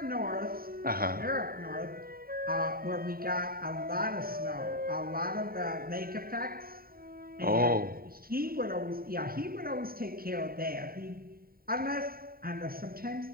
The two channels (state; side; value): late; left; 0.43 ms